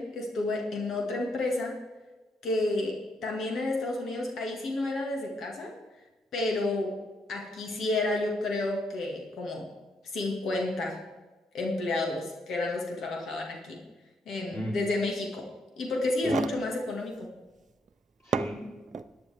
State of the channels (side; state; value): both; normal; correlation 0.75